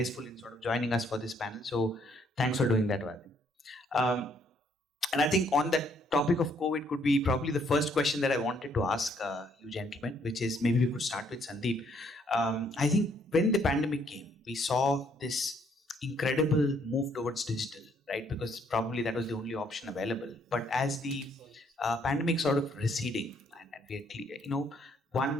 in sort of joining us for this panel. So thanks for doing that, Vadi. And I think on that topic of COVID could be probably the first question that I wanted to ask you gentlemen, which is maybe we could start with Sandeep. I think when the pandemic came, we saw this incredible move towards digital, right? Because probably that was the only option available. But as the pandemic sort of receding, and we are clear,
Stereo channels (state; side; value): normal; both; correlation 0.68